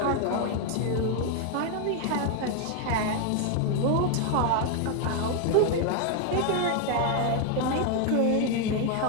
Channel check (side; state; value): both; different; correlation 0.01